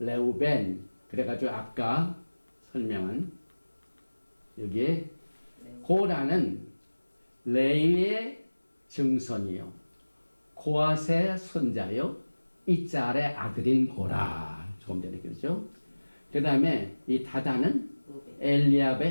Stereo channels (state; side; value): inverted; both; correlation -1.00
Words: 레우벤 그래가지고 아까 설명한 여기에 고라는 레위의 증손이요 고앗의 손자요 이짤의 아들인 고라 조금 전에 그랬죠. 그 다음에 이 다단은